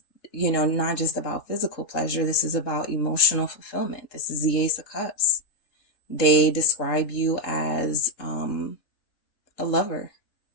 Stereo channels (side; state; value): right; late; 3.8 ms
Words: you know, not just about physical pleasure. This is about emotional fulfillment. This is the Ace of Cups. They describe you as a lover.